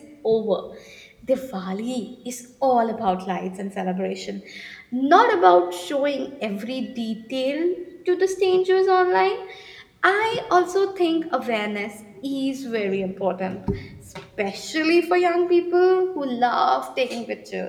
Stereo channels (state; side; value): identical; both; correlation 1.00